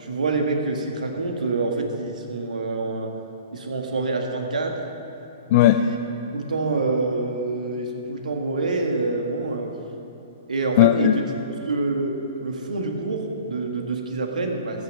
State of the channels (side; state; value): both; inverted; correlation -0.43